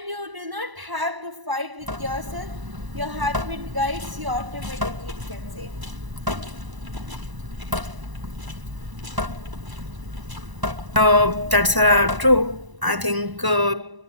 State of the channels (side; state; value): left; late; 1.0 ms